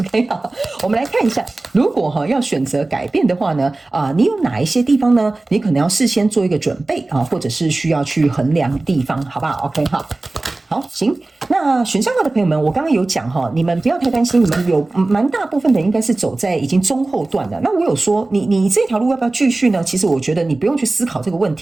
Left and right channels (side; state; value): left; quieter; 3.1 dB